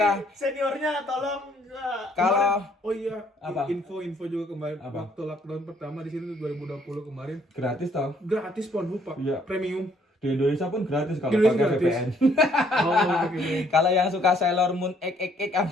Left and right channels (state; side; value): normal; both; correlation 0.65